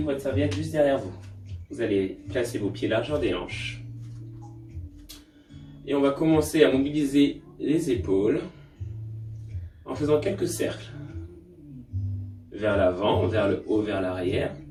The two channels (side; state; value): both; identical; correlation 1.00